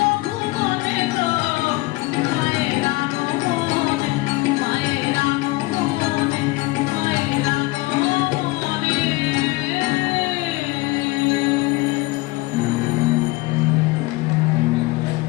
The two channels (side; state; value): right; quieter; 21.8 dB